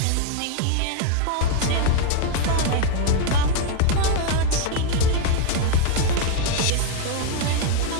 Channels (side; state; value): both; different; correlation 0.01